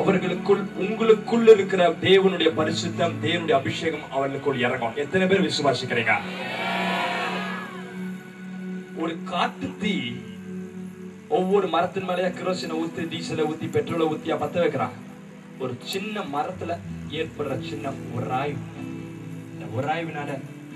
உங்களுக்குள் இருக்கிற தேவனுடைய பரிசுத்தம், தேவனுடைய அபிஷேகம் அவர்களுக்குள் இறங்கும். எத்தனை பேர் விசுவாசிக்கிறீங்க? ஒரு காட்டு தீ ஒவ்வொரு மரத்தின் மேலேயே கிரோசினை ஊத்தி, டீசலை ஊத்தி, பெட்ரோலை ஊத்தியா பத்த வைக்கிறாங்க. ஒரு சின்ன மரத்துல ஏற்படுற சின்ன உராய்வு, இந்த உராய்வினால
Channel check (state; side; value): identical; both; correlation 1.00